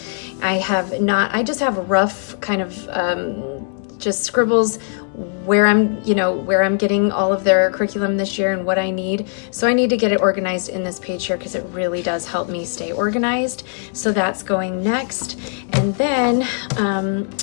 I just have rough kind of just scribbles where I'm getting all of their curriculum this year and what I need. So I need to get it organized in this page here because it really does help me stay organized. So that's going next. And then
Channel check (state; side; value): silent; right; digital silence